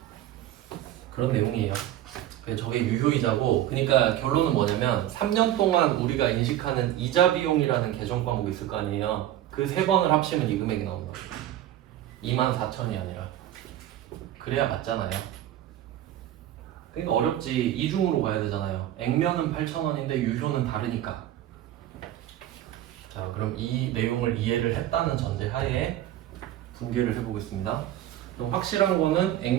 그런 내용이에요. 저게 유효이자고, 그러니까 결론은 뭐냐면 3년 동안 우리가 인식하는 이자 비용이라는 계정 과목이 있을 거 아니에요. 그 세 번을 합치면 이 금액이 나온다고. 2만 4천이 아니라. 그래야 맞잖아요. 그러니까 어렵지. 이중으로 가야 되잖아요. 액면은 8,000원인데 유효는 다르니까. 자, 그럼 이 내용을 이해를 했다는 전제 하에 분개를 해보겠습니다. 그럼 확실한 거는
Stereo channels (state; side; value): quieter; left; 12.8 dB